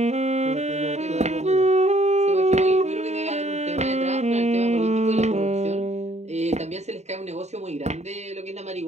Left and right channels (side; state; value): left; late; 0.32 ms